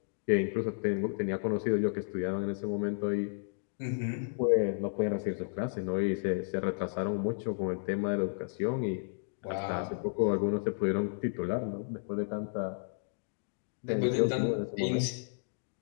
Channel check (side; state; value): right; silent; digital silence